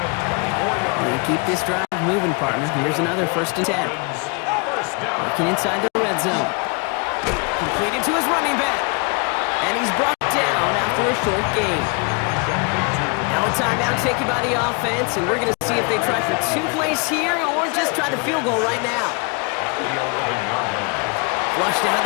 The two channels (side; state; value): right; quieter; 32.7 dB